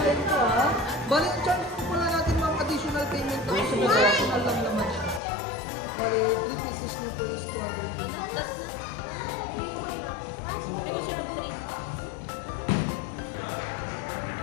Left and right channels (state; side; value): drops out; right; at 5.2 s